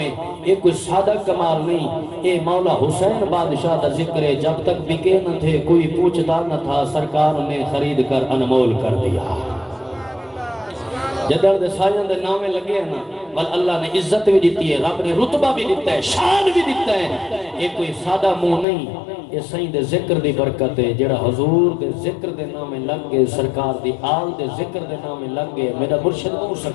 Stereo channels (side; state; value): right; drops out; at 18.7 s